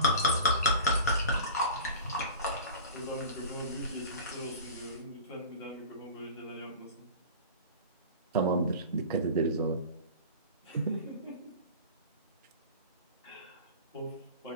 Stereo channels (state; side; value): inverted; both; correlation -0.36